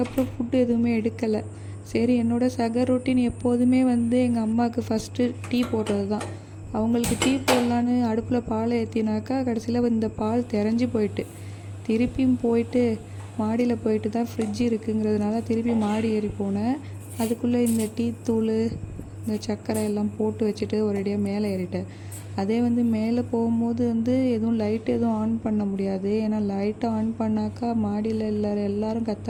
ஃபுட்டு எதுவுமே எடுக்கலை. சரி, என்னோடய சகர் ரொட்டீன் எப்போதுமே எங்கள் அம்மாவுக்கு ஃபஸ்ட்டு டீ போடுறது தான். அவங்களுக்கு டீ போடலான்னு அடுப்பில் பால் ஏற்றினாக்கா கடைசியில் இந்த பால் திரஞ்சி போயிட்டு, திருப்பியும் போயிட்டு மாடியில் போயிட்டு தான் ஃப்ரிட்ஜ் இருக்குங்கிறதுனால திருப்பி மாடி ஏறி போனேன். அதுக்குள்ளே இந்த டீ தூள், இந்த சர்க்கரை எல்லாம் போட்டு வச்சுட்டு ஒரேடியாக மேலே ஏறிட்டேன். அதே மேலே போகும்போது எதுவும் லைட் எதுவும் ஆன் பண்ண முடியாது. ஏன்னா லைட்டை ஆன் பண்ணாக்கா மாடியில் எல்லோரும்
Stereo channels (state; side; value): identical; both; correlation 1.00